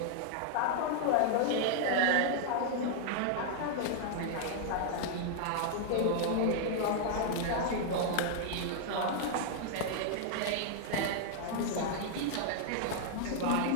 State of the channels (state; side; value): different; both; correlation -0.01